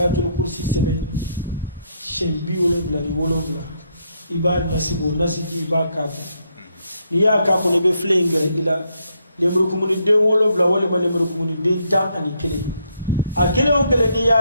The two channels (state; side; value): inverted; both; correlation -0.75